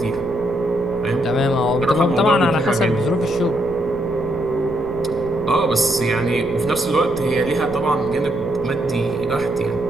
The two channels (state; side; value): noise; left; rumble, 14 dB below the sound